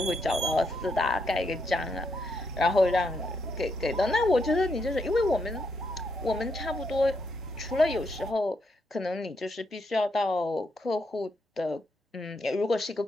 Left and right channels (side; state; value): both; normal; correlation 0.79